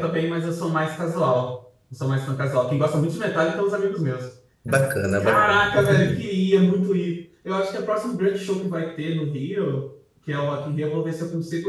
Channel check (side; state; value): both; identical; correlation 1.00